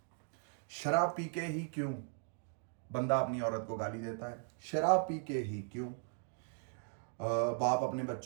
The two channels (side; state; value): left; silent; 53 dB below the other